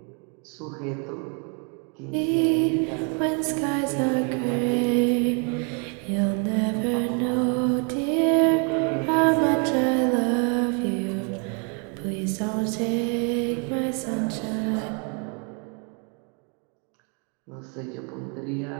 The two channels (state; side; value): quieter; left; 38.1 dB